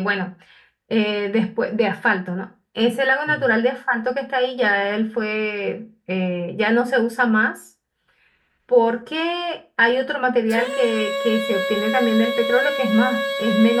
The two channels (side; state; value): both; identical; correlation 1.00